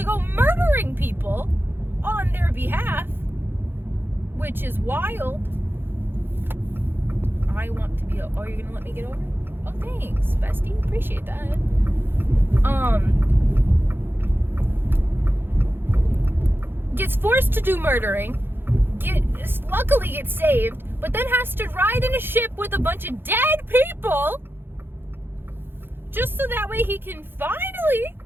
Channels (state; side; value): late; left; 0.10 ms